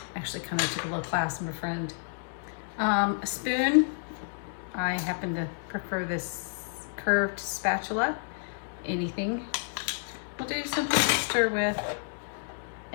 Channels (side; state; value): right; silent; digital silence